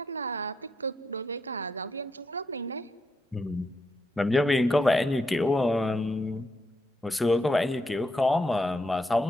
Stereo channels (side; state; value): both; normal; correlation 0.81